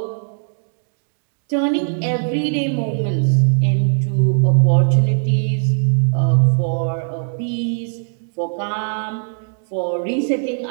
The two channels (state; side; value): silent; left; digital silence